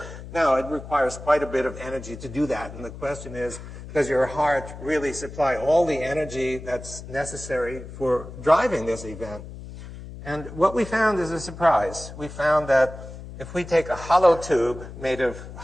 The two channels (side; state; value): left; noise; hum, 13 dB below the sound